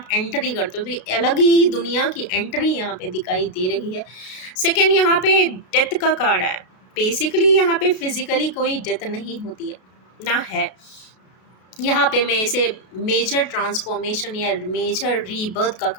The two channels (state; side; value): late; right; 32 ms